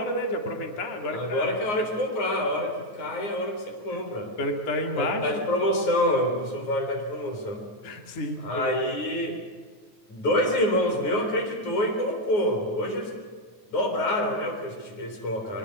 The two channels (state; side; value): late; right; 9.5 ms